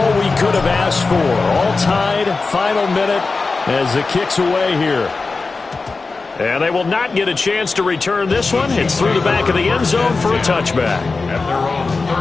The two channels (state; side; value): quieter; right; 4.0 dB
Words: we could have asked for. All tied, final minute as the kick's away here. And they will not get a chance to return this one. It's through the back of the end zone for a touchback. At their own